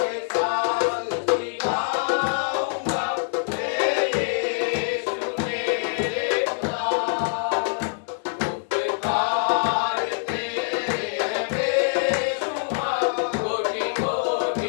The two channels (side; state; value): right; silent; digital silence